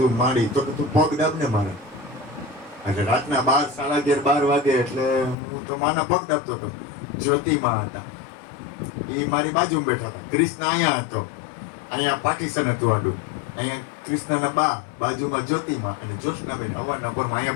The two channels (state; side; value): drops out; right; at 5.4 s